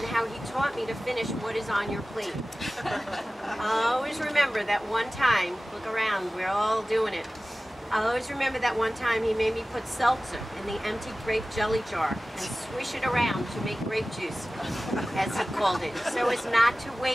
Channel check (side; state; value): both; normal; correlation 0.97